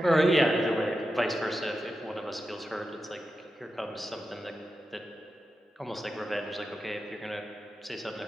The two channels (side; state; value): both; normal; correlation 0.90